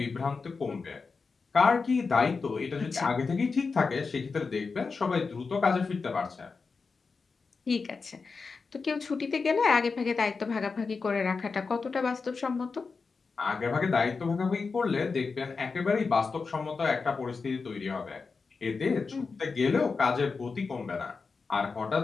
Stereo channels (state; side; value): quieter; right; 4.7 dB